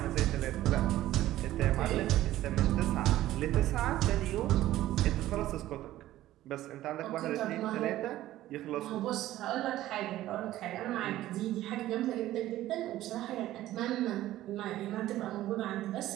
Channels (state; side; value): quieter; left; 14.6 dB